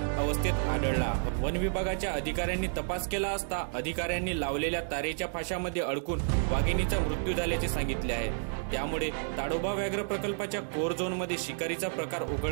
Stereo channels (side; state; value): left; silent; digital silence